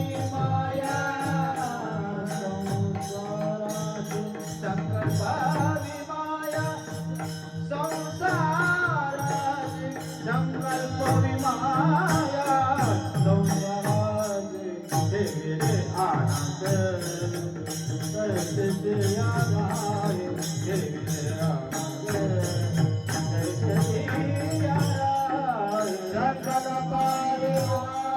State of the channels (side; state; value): both; identical; correlation 1.00